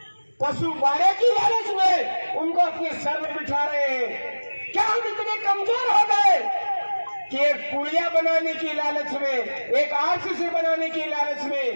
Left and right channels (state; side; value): inverted; both; correlation -1.00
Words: पशु बाड़े की लालच में उनको अपने सर में बिठा रहे हैं? क्या हम इतने कमजोर हो गए कि एक पुलिया बनाने की लालच में, एक आरसीसी बनाने की लालच